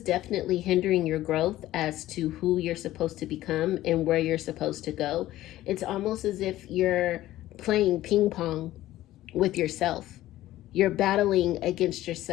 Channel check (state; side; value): quieter; right; 15.0 dB